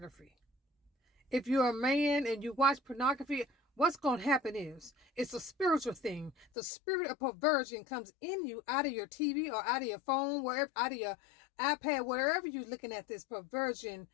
If you're a man and you watch pornography, what's going to happen is it's a spiritual thing. The spirit of perversion comes in you out of your TV or out of your phone, wherever, out of your iPad, wherever you're looking at this perversion,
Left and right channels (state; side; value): drops out; right; at 6.5 s